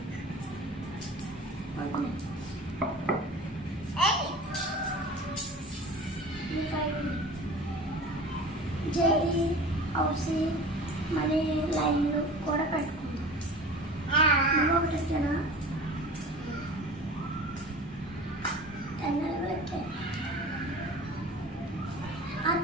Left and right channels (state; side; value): normal; both; correlation 0.38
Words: జేడి హౌసీ మళ్ళీ లైన్లు కూడా పెట్టుకుందాం. ఒకటి ఎక్కానా 10 నెలలు ఎక్కాను. అది